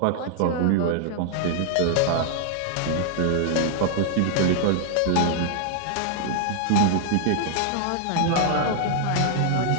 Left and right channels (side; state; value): both; different; correlation 0.00